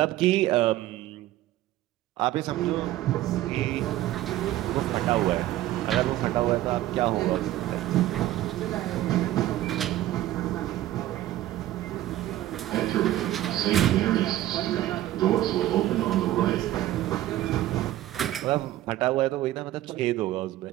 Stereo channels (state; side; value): quieter; left; 14.6 dB